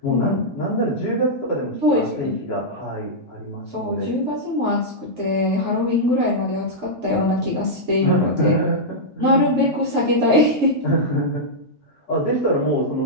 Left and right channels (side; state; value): both; normal; correlation -0.08